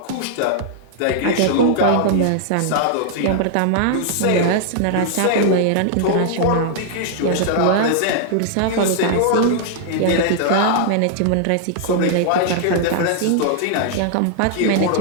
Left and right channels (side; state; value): both; different; correlation -0.01